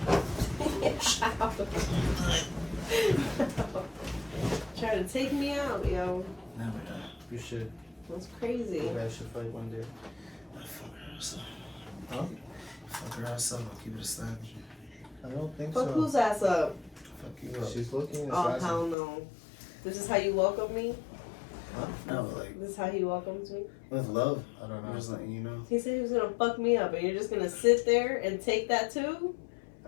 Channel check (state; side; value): drops out; right; at 18.9 s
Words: Trying to take me out, yo. No, we're not. You should. That's crazy. You guys should fight one day. I fuck her outside. Huh? Fuck her outside. I'll keep it a stack. I don't think Fuck so. whose ass up? Fuck you up. She's looking. Oh, hell no. This is how you welcome me? No, like, This is how he welcomes me? with love. I don't I'm know. just letting you know. He said he was gonna fuck me up, and you're just gonna sit there and take that too?